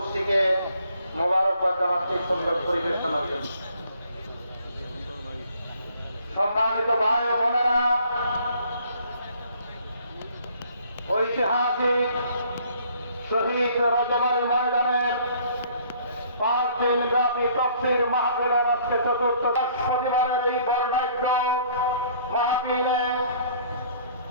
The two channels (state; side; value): inverted; both; correlation -0.59